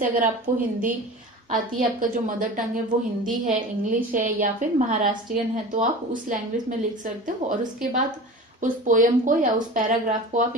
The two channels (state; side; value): normal; both; correlation 0.35